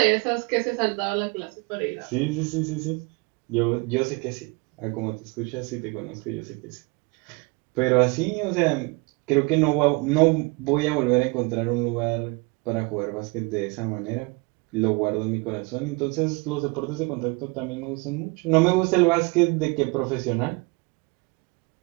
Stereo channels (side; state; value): left; quieter; 27.7 dB